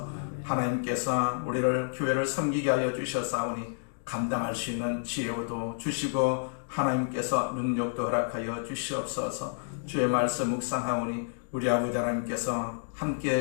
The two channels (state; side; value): silent; right; digital silence